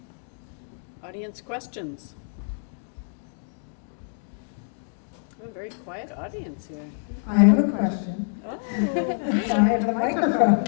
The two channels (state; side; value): silent; right; digital silence